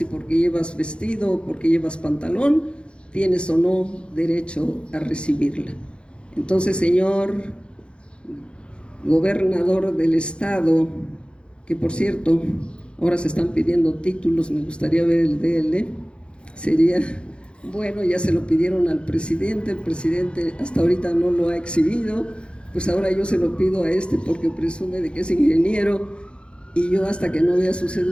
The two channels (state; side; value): late; right; 0.056 ms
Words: y porque llevas vestido o porque llevas pantalón, tienes o no derecho a recibirla. Entonces, señor gobernador del estado, que por cierto, ahora se están pidiendo títulos, me gustaría ver el de él, sería bueno, ya se lo pidieron al presidente, el presidente hasta ahorita no lo ha exhibido, pues ahora yo se lo pido a este porque presume de que es ingeniero y yo hasta que no vea su